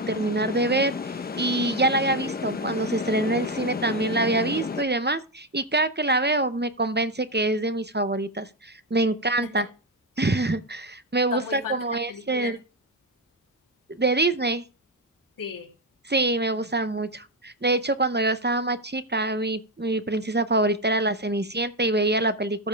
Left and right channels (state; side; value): normal; both; correlation 0.08